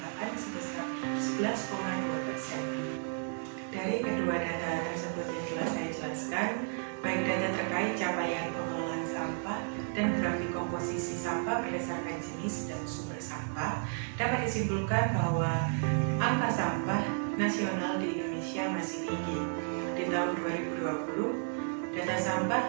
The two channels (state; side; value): silent; left; 56 dB below the other